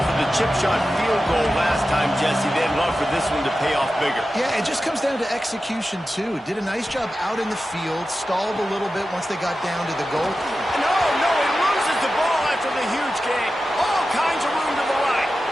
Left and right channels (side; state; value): both; normal; correlation 0.93